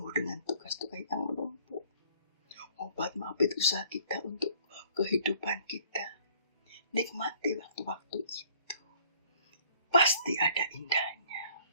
dengan tugas-tugas yang menumpuk. Obat maafit usaha kita untuk kehidupan kita. Nikmati waktu-waktu itu. Pasti ada indahnya.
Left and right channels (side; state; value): both; inverted; correlation -0.57